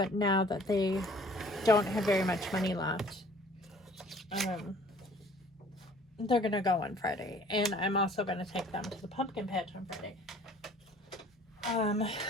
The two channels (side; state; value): both; normal; correlation 0.53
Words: now that they don't have very much money left, they're gonna go on Friday, and I'm also gonna take them to the pumpkin patch on Friday.